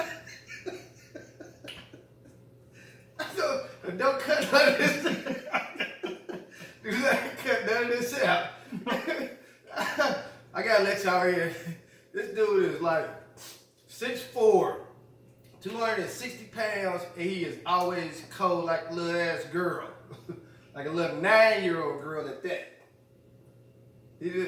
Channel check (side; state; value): both; identical; correlation 1.00